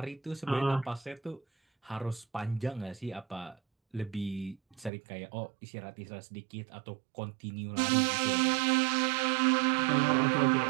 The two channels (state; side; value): drops out; left; at 4.9 s